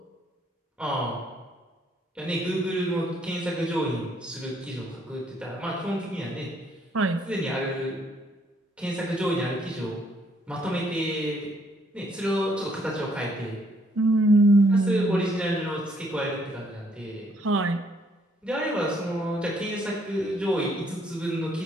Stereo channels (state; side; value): normal; both; correlation 0.68